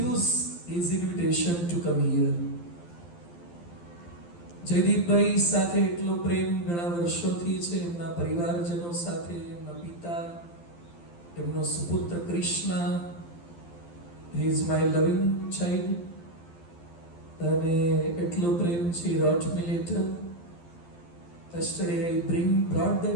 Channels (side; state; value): right; late; 12 ms